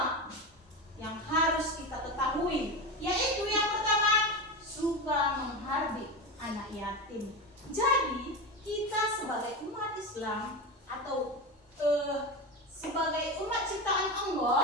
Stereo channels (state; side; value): normal; both; correlation 0.20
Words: yang harus kita ketahui, yaitu yang pertama, suka menghardik anak yatim. Jadi kita sebagai umat Islam atau sebagai umat ciptaan